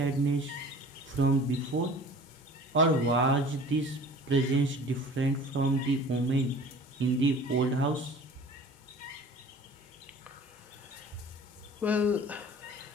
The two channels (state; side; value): normal; both; correlation 0.44